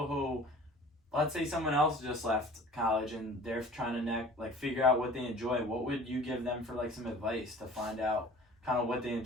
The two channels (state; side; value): normal; both; correlation 0.45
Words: who, let's say someone else just left college and they're trying to figure out what they enjoy? What would you give them for like some advice to find out kind of what they